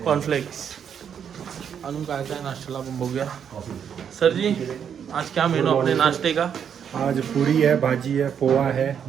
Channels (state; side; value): quieter; left; 8.0 dB